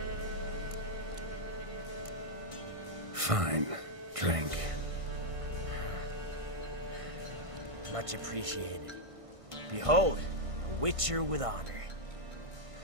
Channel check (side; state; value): left; late; 1.5 ms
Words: Fine. Drink. Much appreciated. Behold, a Witcher with honor.